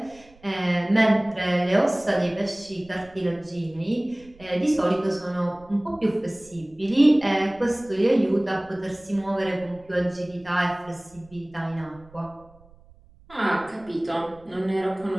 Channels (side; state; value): right; noise; rumble, 26 dB below the sound